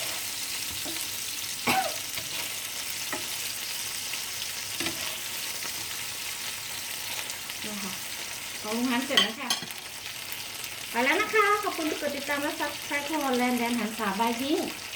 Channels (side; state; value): both; identical; correlation 1.00